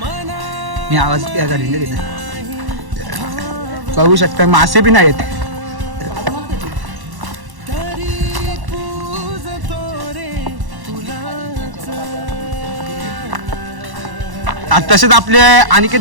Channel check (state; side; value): late; left; 1.1 ms